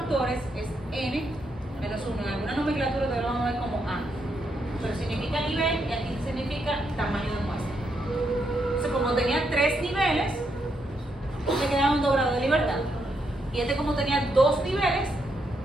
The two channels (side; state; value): both; normal; correlation 0.79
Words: es N menos 1. En alguna nomenclatura te lo vamos a ver como A. Pero significa nivel y aquí significa tamaño de muestra. Entonces, como tenía 3 niveles, le quedaban 2 grados de libertad. Y este, como tenía 2 niveles,